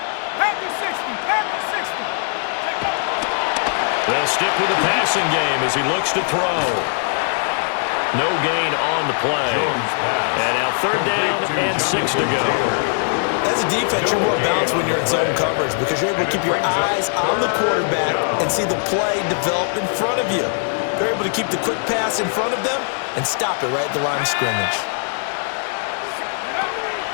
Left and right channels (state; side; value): silent; right; 64 dB below the other